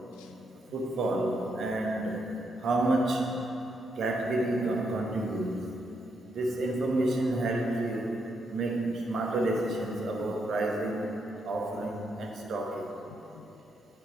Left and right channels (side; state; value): both; normal; correlation 0.79